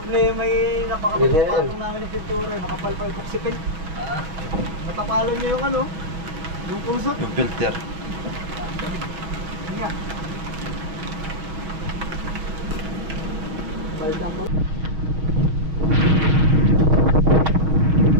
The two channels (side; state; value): left; late; 6.4 ms